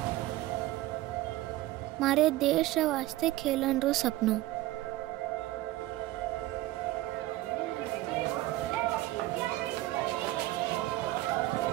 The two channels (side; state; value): left; quieter; 17.0 dB